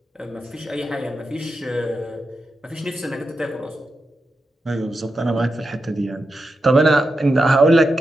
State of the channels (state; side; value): normal; both; correlation 0.88